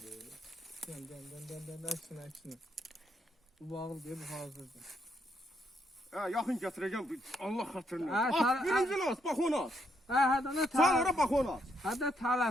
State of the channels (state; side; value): normal; both; correlation 0.75